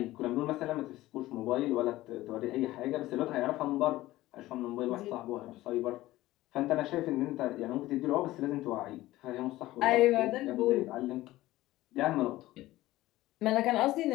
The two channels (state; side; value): quieter; right; 16.7 dB